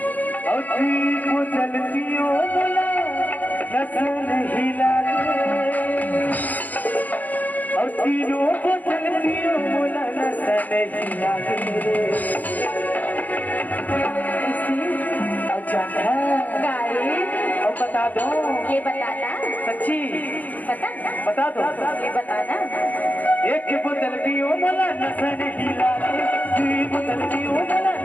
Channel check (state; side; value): late; right; 0.081 ms